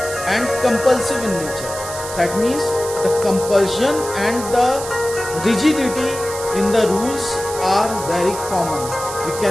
and compulsive in nature. That means the compulsion and the rigidity in the rules are very common. We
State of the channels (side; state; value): right; noise; hiss, 10 dB below the sound